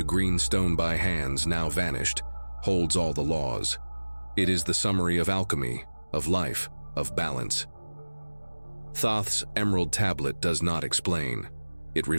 green stone by hands, now vanished, holds all the laws. It is the summary of alchemy, of life, of balance. Thoth's emerald tablet does not explain. It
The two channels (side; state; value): both; inverted; correlation -1.00